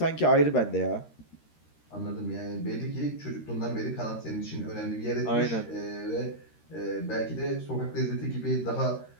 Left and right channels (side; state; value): right; late; 13 ms